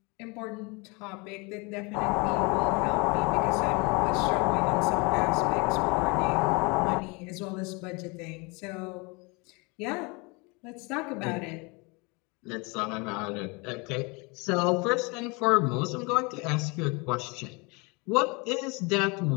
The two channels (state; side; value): quieter; right; 28.7 dB